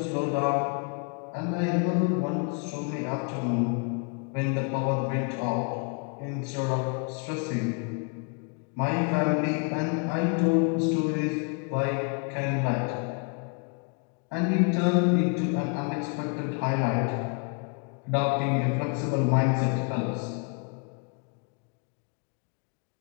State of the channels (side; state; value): right; quieter; 36.7 dB